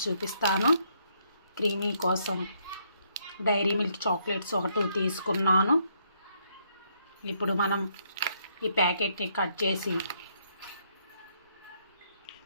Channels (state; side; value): inverted; both; correlation -0.72